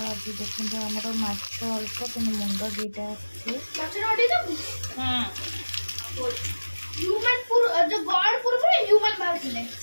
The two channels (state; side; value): inverted; both; correlation -1.00